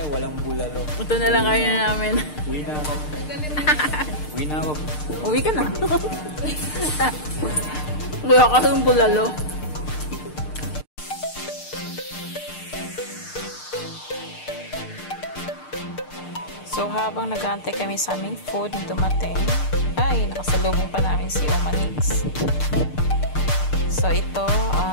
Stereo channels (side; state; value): right; late; 6.6 ms